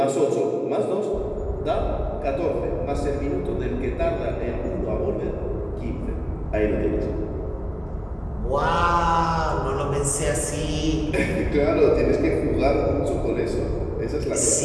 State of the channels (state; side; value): identical; both; correlation 1.00